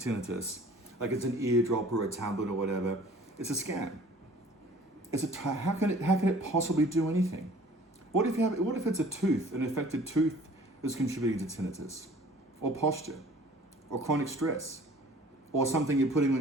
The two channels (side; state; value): both; normal; correlation 0.50